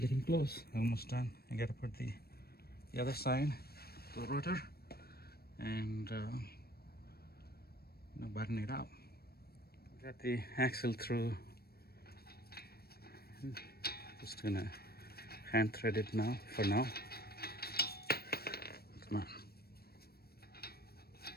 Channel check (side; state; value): right; late; 0.45 ms